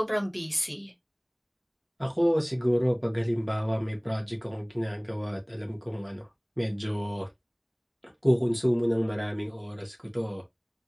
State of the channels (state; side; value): identical; both; correlation 1.00